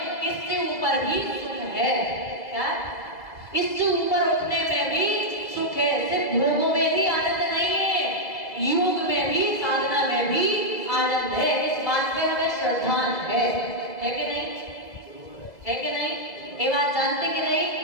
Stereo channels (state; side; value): late; right; 2.0 ms